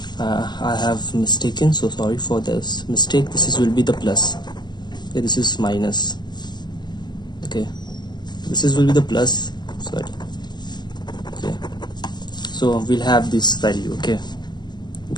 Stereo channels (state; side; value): late; right; 0.21 ms